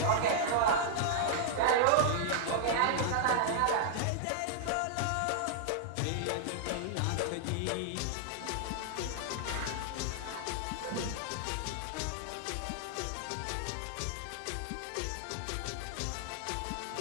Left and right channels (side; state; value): both; different; correlation -0.01